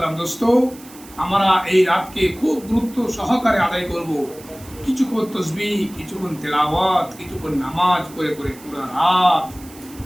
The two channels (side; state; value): right; noise; hiss, 20 dB below the sound